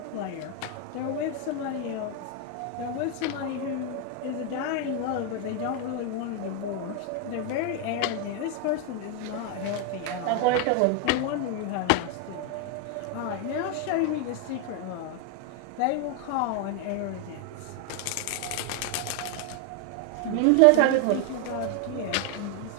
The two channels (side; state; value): both; different; correlation 0.01